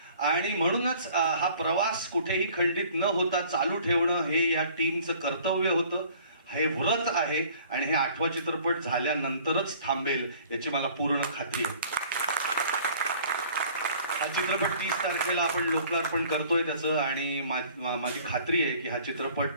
आणि म्हणूनच हा प्रवास कुठेही खंडित न होता चालू ठेवणं हे या टीमचं कर्तव्य होतं, हे व्रत आहे. आणि हे 8वा चित्रपट झाल्यानंतरच थांबेल याची मला पूर्ण खात्री आहे. हा चित्रपट 30 तारखेला आपण लोकार्पण करतोय त्याचं. आणि माझी खात्री आहे की हा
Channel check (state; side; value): inverted; both; correlation -0.52